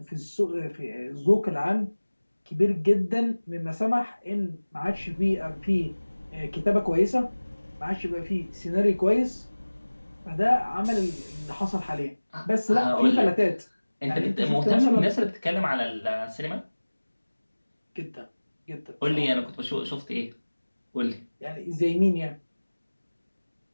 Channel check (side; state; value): both; inverted; correlation -1.00